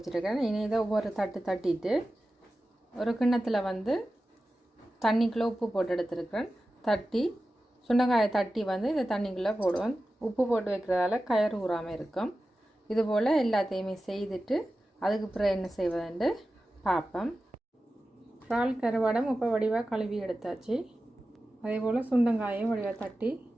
இனி இதை ஒவ்வொரு தட்டிட்டு ஒரு கிண்ணத்தில் தண்ணிக்குள்ளே உப்பு போட்டு எடுத்துருக்கேன். சுண்டைக்காயை தட்டி இந்த தண்ணிக்குள்ளே போடுவேன். உப்பு போட்டு வைக்கிறதால கயறு ஊறாமல் இருக்கும். இதுபோல் எல்லாத்தையுமே செய்துட்டு அதுக்கு பிறகு என்ன செய்வதுன்னு பார்ப்பேன். இறால் கருவாடம் இப்போ வடிவாக கழுவி எடுத்தாச்சு. அதே போல் சுண்டங்காயும் வடிவாக தட்டி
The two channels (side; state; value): both; normal; correlation 0.94